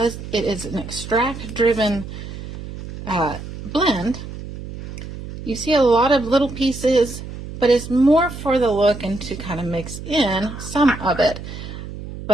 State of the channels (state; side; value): noise; right; hum, 11 dB below the sound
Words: it is an extract-driven blend, you see a lot of little pieces, but it's more for the look and to kind of mix in some of it.